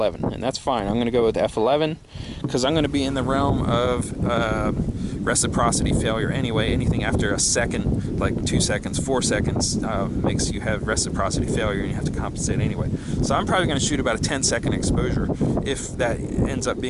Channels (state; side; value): identical; both; correlation 1.00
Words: and that's fine. I'm going to go with f11 because I'm going to be in the realm of reciprocity failure anyway. Anything after a second, like 2 seconds, 4 seconds, makes you have reciprocity failure, and you have to compensate anyway. So I'm probably going to shoot about a 10-second exposure if that ends up